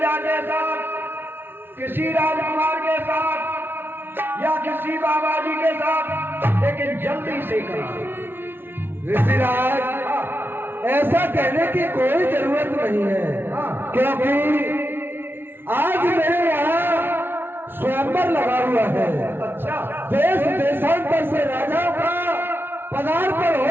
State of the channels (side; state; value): left; late; 0.11 ms